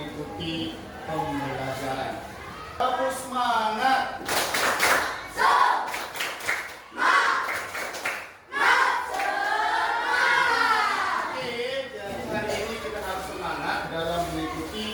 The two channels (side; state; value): both; identical; correlation 1.00